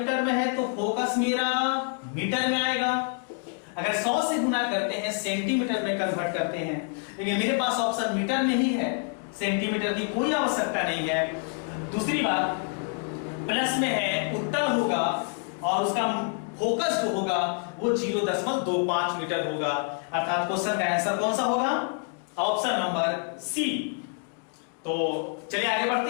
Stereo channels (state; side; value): quieter; right; 40.0 dB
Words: में है तो फोकस मेरा मीटर में आएगा। अगर 100 से गुना करते हैं सेंटीमीटर में कन्वर्ट करते हैं, लेकिन मेरे पास ऑप्शन मीटर में ही है, सेंटीमीटर की कोई आवश्यकता नहीं है। दूसरी बात, प्लस में है, उत्तल होगा और उसका फोकस जो होगा वो 0.25 मीटर होगा, अर्थात क्वेश्चन का आंसर कौन सा होगा, ऑप्शन नंबर सी। तो चलिए आगे